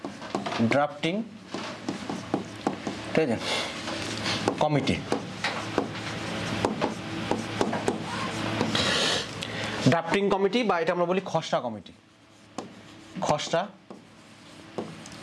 ড্রাফটিং ঠিক আছে কমিটি। ড্রাফটিং কমিটি বা এটা আমরা বলি খসড়া কমিটি। খসড়া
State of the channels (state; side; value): identical; both; correlation 1.00